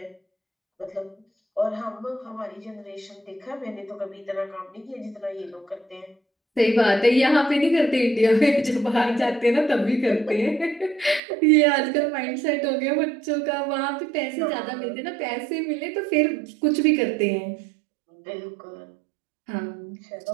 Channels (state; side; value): drops out; left; at 11.2 s